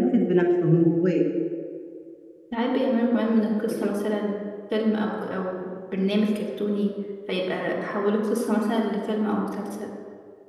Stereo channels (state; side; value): identical; both; correlation 1.00